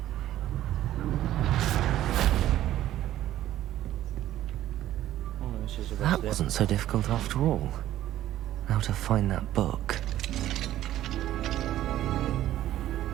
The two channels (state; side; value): quieter; left; 13.3 dB